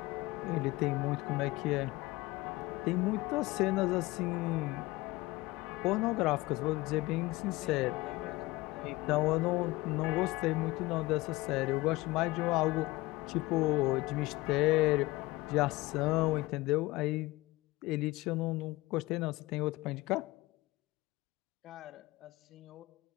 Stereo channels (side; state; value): right; quieter; 20.2 dB